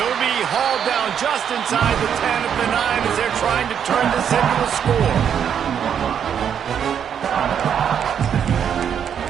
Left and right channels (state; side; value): quieter; left; 8.3 dB